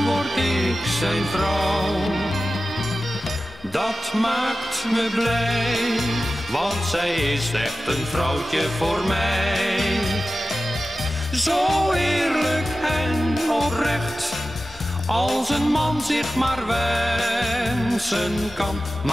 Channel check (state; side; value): noise; left; hum, 25 dB below the sound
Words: word ik zijn vrouw. Dat maakt me blij, want zij is echt een vrouwtje voor mij. Zo eerlijk en oprecht, als een man zich maar wensen kan.